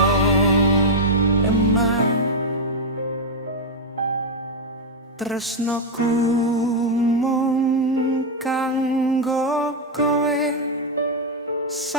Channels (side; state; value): both; normal; correlation 0.01